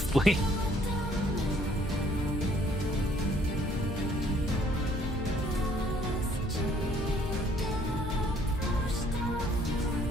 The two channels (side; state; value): both; normal; correlation 0.61